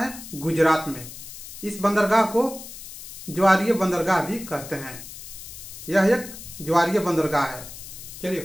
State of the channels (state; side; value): noise; left; hiss, 13 dB below the sound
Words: है? गुजरात में। इस बंदरगाह को ज्वारीय बंदरगाह भी कहते हैं। यह एक ज्वारीय बंदरगाह है। चलिए